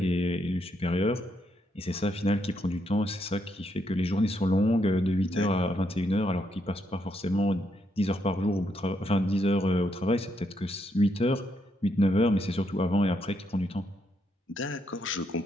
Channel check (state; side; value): normal; both; correlation 0.77